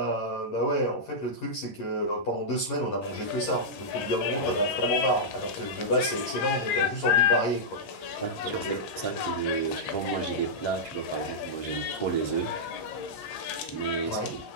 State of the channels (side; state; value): right; late; 11 ms